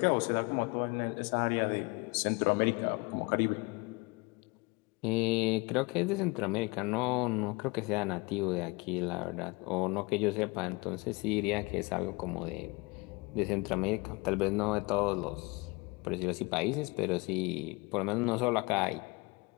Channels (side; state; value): right; quieter; 26.4 dB